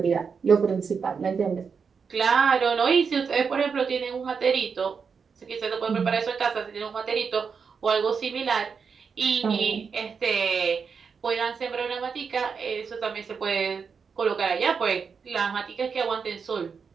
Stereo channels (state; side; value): quieter; left; 5.9 dB